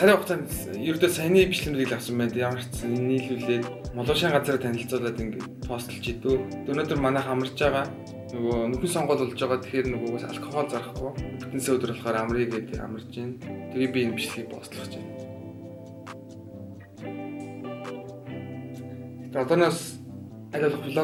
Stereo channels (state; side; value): identical; both; correlation 1.00